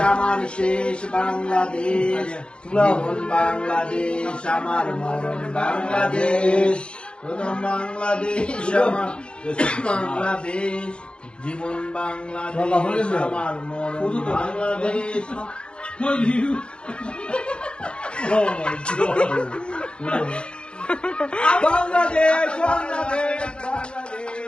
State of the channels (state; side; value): late; right; 0.055 ms